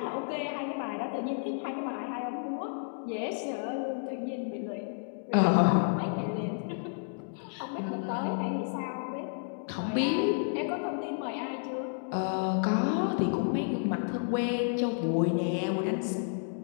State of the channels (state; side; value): silent; right; digital silence